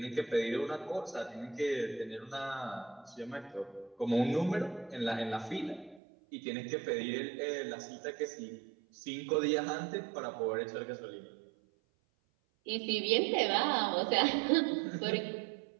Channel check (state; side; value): drops out; left; at 6.0 s